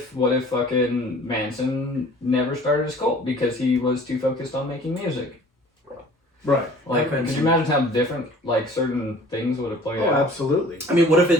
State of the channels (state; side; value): normal; both; correlation 0.49